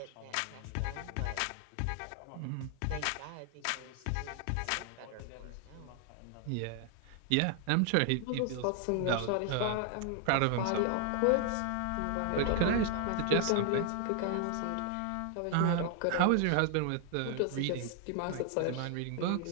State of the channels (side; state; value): both; different; correlation 0.00